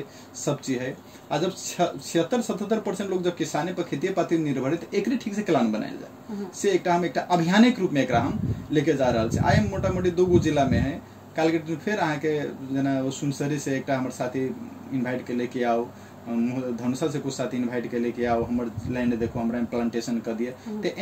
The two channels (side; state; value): both; identical; correlation 1.00